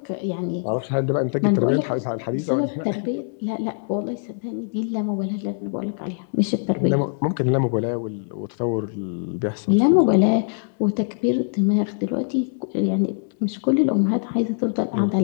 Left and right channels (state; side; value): silent; right; digital silence